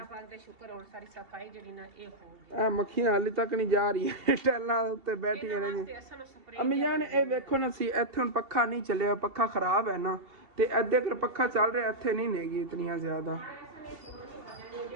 ਪਾਕ ਦਾ ਸ਼ੁਕਰ ਹੁਣ ਸਾਰੀ ਸਫਾਈ ਜਿਹੜੀ ਨਾ ਇਹ ਹੋ ਗਈ ਇਹ ਮੱਖੀਆਂ ਹਾਲੇ ਤੱਕ ਨਹੀਂ ਜਾ ਰਹੀਆਂ ਟੈਲਾਂ ਉੱਤੇ ਬੈਠੀਆਂ ਨੇ ਤੇ ਅਸਾਂ ਨੂੰ ਸਪਰੇ ਅੰਮੀ ਜਾਨ ਇਹ ਵੇਖੋ ਨਾ ਸੀ ਇੱਥੇ ਹੁਣ ਪੱਖਾ ਨਹੀਂ ਚੱਲਿਆ ਪੱਖਾ ਖਰਾਬ ਹੈ ਨਾ ਤੇ ਅੱਧੇ ਕਰ ਪੱਖਾ ਚੱਲ ਰਿਹਾ ਇੱਥੇ ਨਹੀਂ ਨੇਗੀ ਇਤਨੀਆਂ ਜ਼ਿਆਦਾ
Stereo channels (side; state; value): left; late; 2.7 ms